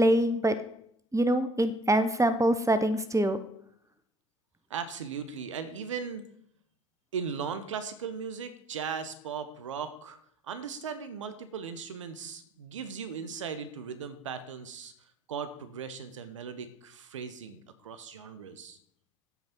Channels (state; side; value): normal; both; correlation 0.62